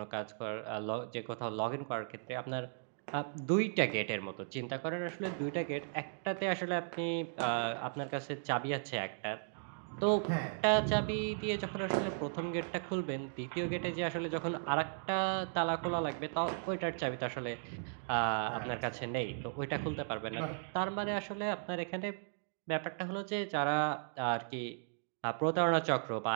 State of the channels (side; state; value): left; silent; digital silence